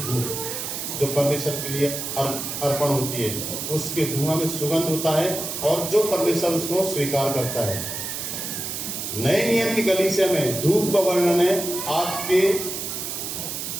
जो परमेश्वर के लिए अर्पण होती है। उसके धुआं में सुगंध होता है और जो परमेश्वर उसको स्वीकार करता है। नए नियम की कलीसिया में धूप का वर्णन है आपके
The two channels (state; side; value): noise; right; hiss, 5 dB below the sound